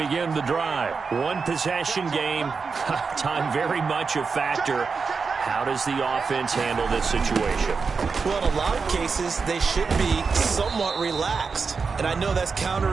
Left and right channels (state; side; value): quieter; left; 5.0 dB